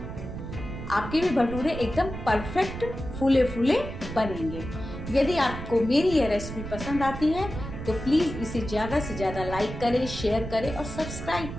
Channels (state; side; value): noise; right; rumble, 8 dB below the sound